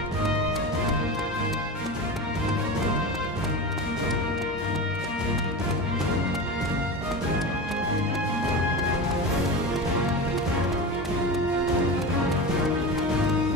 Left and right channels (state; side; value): normal; both; correlation 0.26